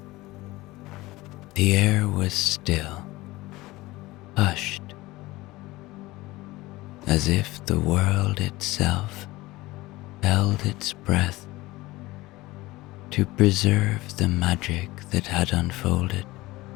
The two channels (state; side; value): quieter; right; 19.6 dB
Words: The air was still, hushed, as if the world itself held its breath to preserve the magic that had unfolded.